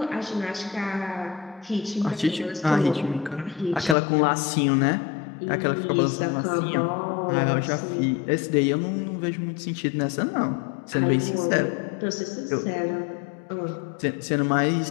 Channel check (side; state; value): right; drops out; at 4.0 s